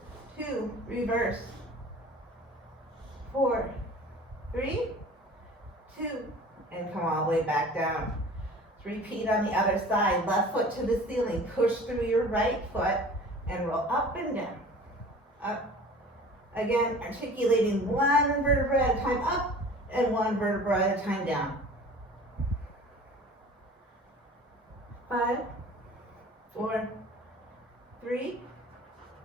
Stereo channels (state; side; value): normal; both; correlation 0.44